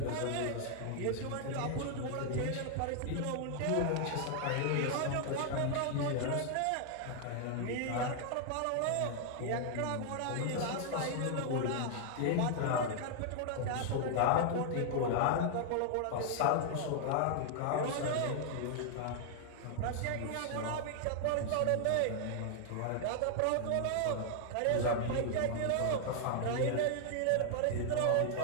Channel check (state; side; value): different; both; correlation 0.00